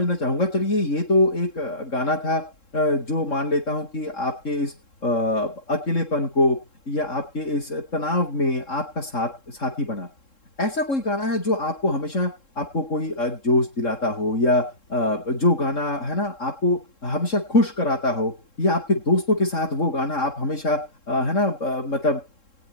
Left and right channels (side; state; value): right; late; 3.7 ms